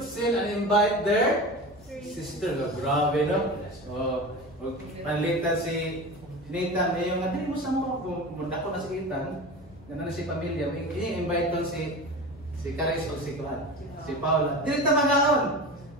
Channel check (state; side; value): noise; left; hum, 23 dB below the sound